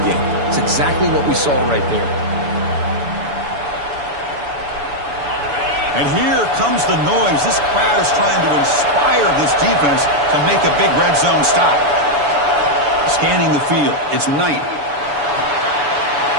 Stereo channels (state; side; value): late; left; 7.0 ms